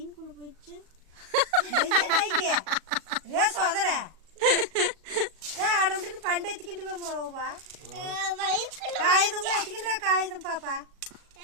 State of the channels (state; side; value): late; left; 37 ms